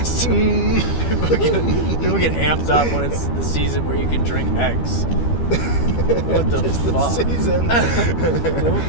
People get amped up when it's the season where you can drink eggs. What the It's fuck? the season.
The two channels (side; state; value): right; late; 13 ms